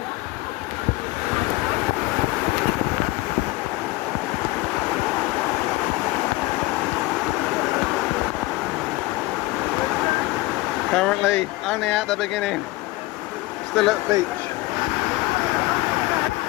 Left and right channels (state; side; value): quieter; right; 19.9 dB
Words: Currently only at the beginning, still at the beach.